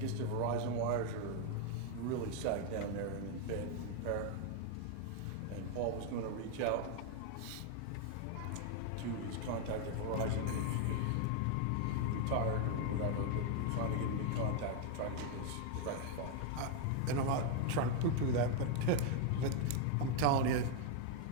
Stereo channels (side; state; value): both; different; correlation 0.00